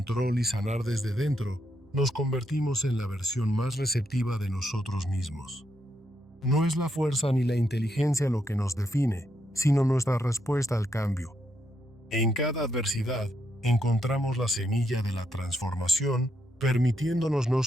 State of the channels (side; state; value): both; normal; correlation 0.79